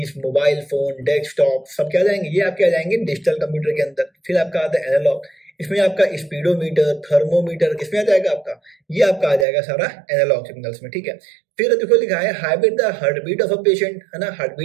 mobile phone, desktop, सब क्या जाएंगे, ये आपके आ जाएंगे डिजिटल कंप्यूटर के अंदर। फिर आपका आता है एनालॉग, इसमें आपका स्पीडोमीटर, थर्मोमीटर, किसमें आ जाएगा आपका, ये आपका आ जाएगा सारा एनालॉग सिग्नल्स में। ठीक है, फिर देखो लिखा है hybrid, the heartbeat of a patient, है ना, हार्ट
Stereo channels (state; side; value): drops out; left; at 9.5 s